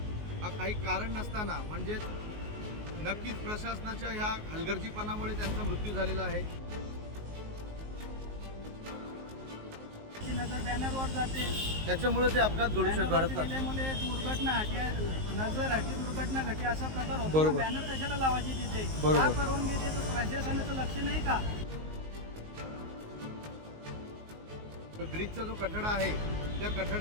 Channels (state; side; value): late; left; 19 ms